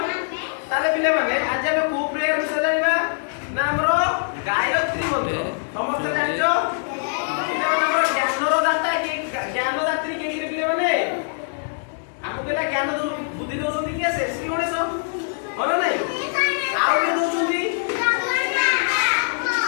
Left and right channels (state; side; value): silent; right; digital silence